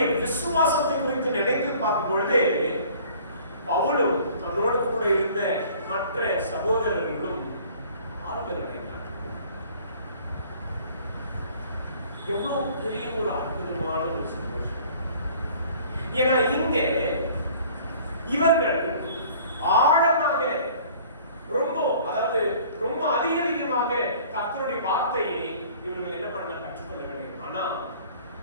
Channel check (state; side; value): inverted; both; correlation -0.51